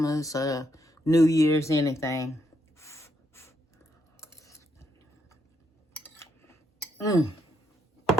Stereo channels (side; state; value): both; normal; correlation 0.77